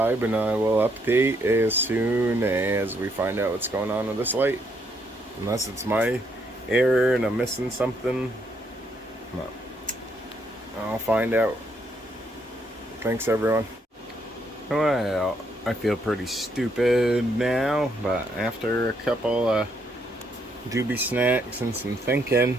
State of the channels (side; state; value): both; normal; correlation 0.73